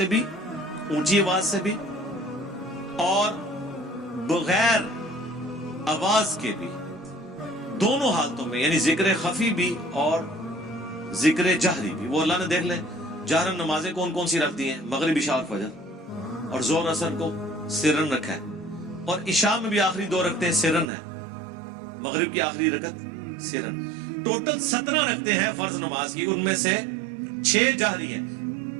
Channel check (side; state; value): left; drops out; at 20.9 s